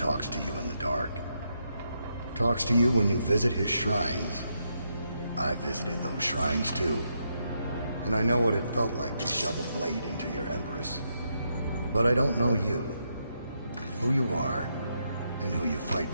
to you in the dark. Talks to you when you visit his shrines. I visited those shrines too. And I know what it felt like to shove a blade into your Empress. But I don't know you. Who you are, and who you fight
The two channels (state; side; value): inverted; both; correlation -0.80